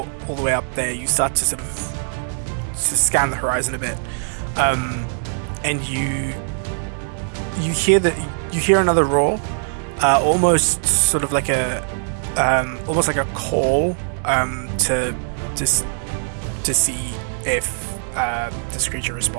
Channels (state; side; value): silent; left; 65 dB below the other